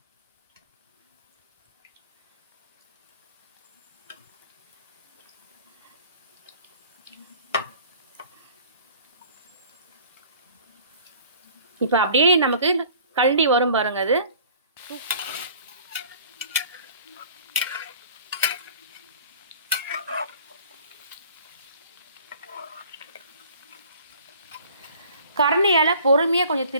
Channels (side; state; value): both; inverted; correlation -0.50